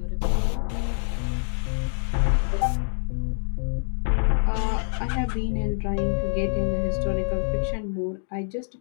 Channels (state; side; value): silent; right; digital silence